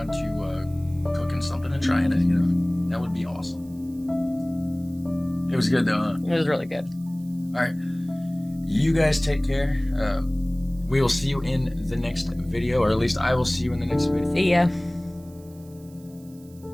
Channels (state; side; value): noise; right; hiss, 27 dB below the sound